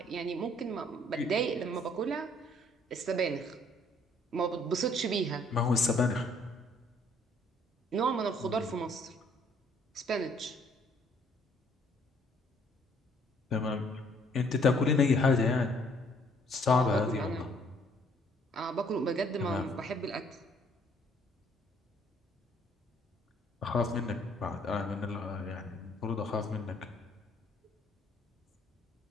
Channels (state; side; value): normal; both; correlation 0.62